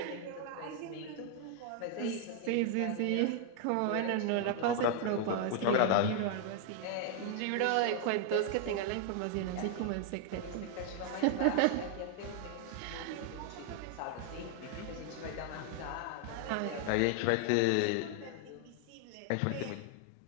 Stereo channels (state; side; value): different; both; correlation 0.00